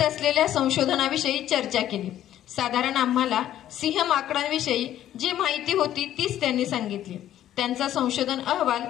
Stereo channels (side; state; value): right; quieter; 12.0 dB